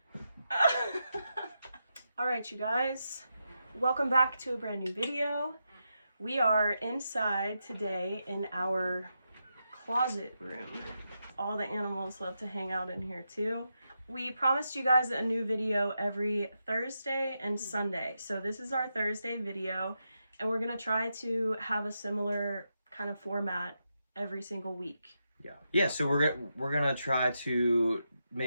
Alright, you guys. Welcome back to a brand new video. We are inside today in our closet room. All the animals love to hang out in here too. We promised you guys a new video every Thursday and Sunday. So this is our Thursday video, and we're gonna try to have a similar kind of format every single week. Yeah, so we're gonna try to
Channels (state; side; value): inverted; both; correlation -0.86